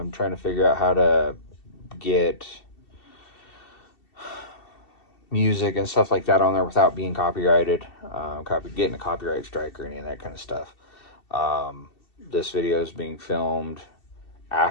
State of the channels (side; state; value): right; late; 2.7 ms